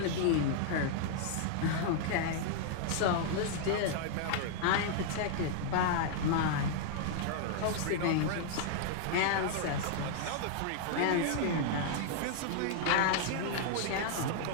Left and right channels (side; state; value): both; different; correlation -0.01